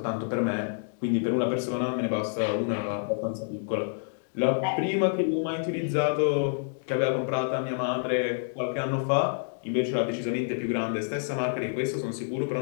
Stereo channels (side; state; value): right; silent; digital silence